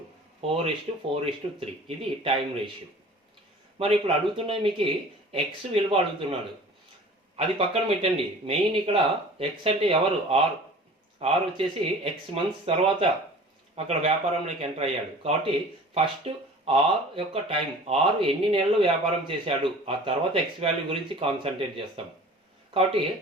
4:4:3 ఇది టైం రేషియో. మరి ఇప్పుడు అడుగుతున్నది మీకు ఎక్స్ విలువ అడుగుతున్నాడు, అది పక్కన పెట్టండి. మెయిన్ ఇక్కడ ఎక్స్ అంటే ఎవరు, ఆర్ వచ్చేసి ఎక్స్ మంత్స్ తర్వాత అక్కడ వ్యాపారంలోకి ఎంటర్ అయ్యాడు. కాబట్టి ఫస్ట్ ఆర్ యొక్క టైం, ఆర్ ఎన్ని నెలలు వ్యాపారం చేశాడు, ఆ తర్వాత ఎక్స్ వాల్యూ గురించి కాన్సన్ట్రేట్ చేస్తాం. కాబట్టి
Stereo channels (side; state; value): both; normal; correlation 0.44